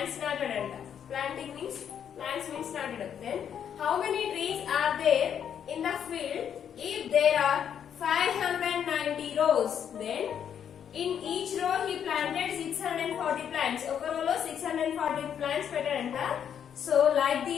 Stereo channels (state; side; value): quieter; right; 8.6 dB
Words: నాటాడంట. Planting means plants means నాటడం. Then how many trees are there in the field if there are 590 rows? Then in each row he planted 640 plants. ఒక row లో 640 plants పెట్టాడంట. So like